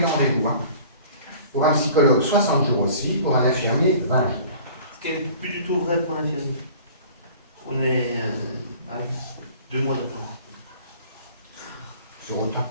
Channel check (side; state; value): both; inverted; correlation -0.47